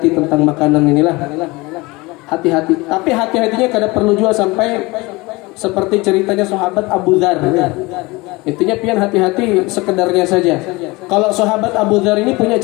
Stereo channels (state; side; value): quieter; right; 23.2 dB